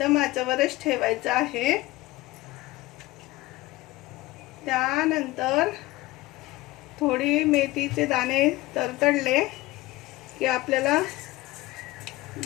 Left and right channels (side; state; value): right; quieter; 19.2 dB